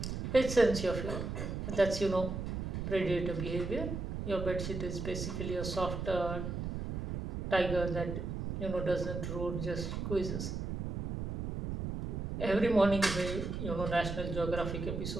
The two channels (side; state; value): right; noise; rumble, 4 dB below the sound